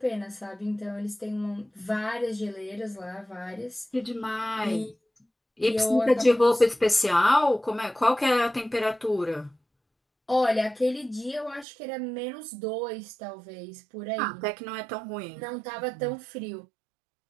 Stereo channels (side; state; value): left; drops out; at 11.7 s